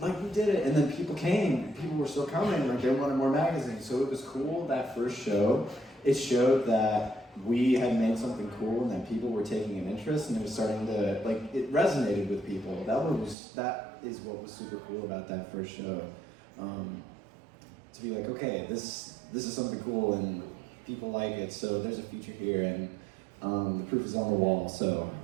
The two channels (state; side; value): drops out; left; at 13.4 s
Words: We did it, and then people came. People were still coming, they wanted more magazines. So it was cool, that first show. It showed that we had made something cool and that people were taking an interest, and it was starting to, it resonated with people. That is what was super cool about that first show. To be okay, this is something cool and people like it, so there's a future here, and the proof is on the wall, so